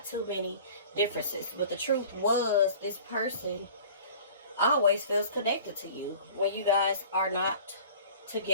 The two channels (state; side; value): inverted; both; correlation -0.45